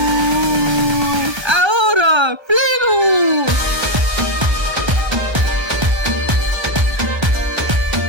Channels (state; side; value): late; left; 1.3 ms